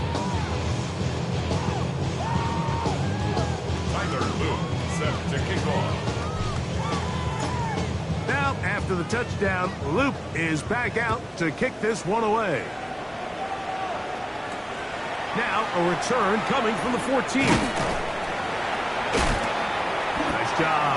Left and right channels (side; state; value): both; identical; correlation 1.00